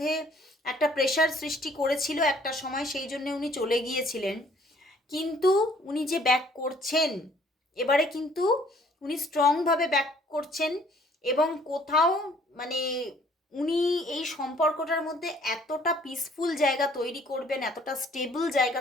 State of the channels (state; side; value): normal; both; correlation 0.59